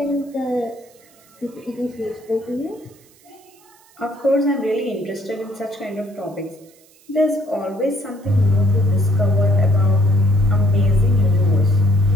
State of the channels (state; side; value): noise; right; hiss, 29 dB below the sound